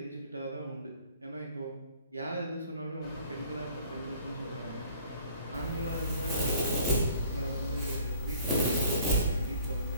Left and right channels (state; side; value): inverted; both; correlation -0.53